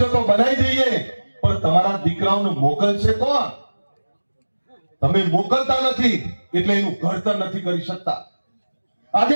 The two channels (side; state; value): both; inverted; correlation -1.00